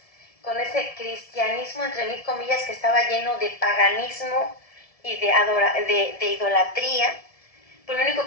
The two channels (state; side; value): late; right; 1.7 ms